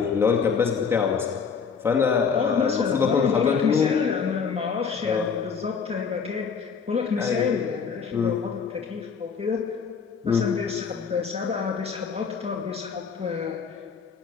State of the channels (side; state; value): right; quieter; 6.0 dB